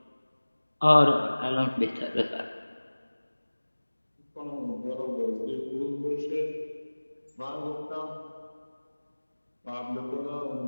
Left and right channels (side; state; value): both; inverted; correlation -1.00